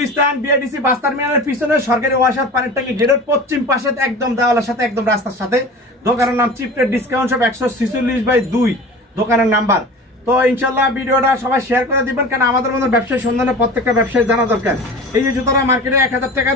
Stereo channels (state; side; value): normal; both; correlation 0.36